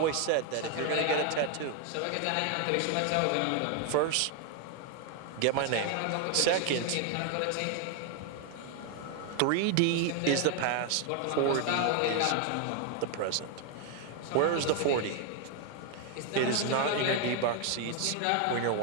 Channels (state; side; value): different; both; correlation 0.01